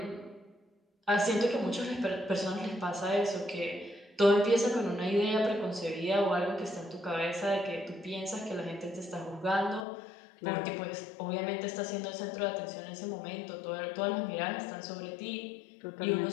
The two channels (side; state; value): right; drops out; at 9.9 s